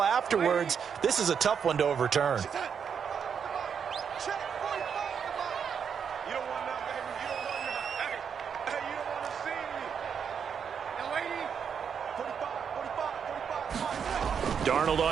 afterwards. This is a tough one to overturn. Darnold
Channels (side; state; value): left; quieter; 7.1 dB